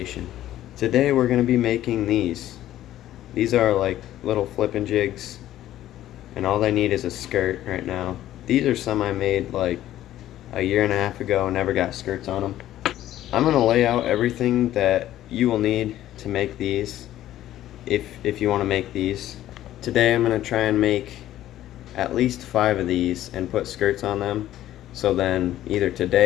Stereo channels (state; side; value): quieter; right; 13.2 dB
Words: Today we're going to be making these. These are like little flipping jigs, and all they need is a skirt right now. These are some I made like a year and a half ago, never got skirts on them. I'm going to lay out everything that you will need to make these if you want to make these. Today I'm going to try and make at least 5 of these and put skirts on them, so then either